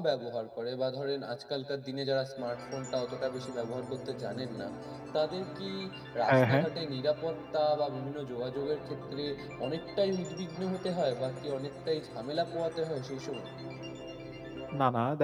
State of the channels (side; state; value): both; identical; correlation 1.00